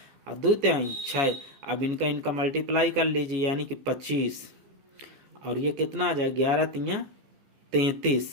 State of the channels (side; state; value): left; late; 14 ms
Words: और 2 तिहाई 6। अब इनका मल्टीप्लाई कर लीजिए, यानी कि 25, और ये कितना आ जाए? 11 तिया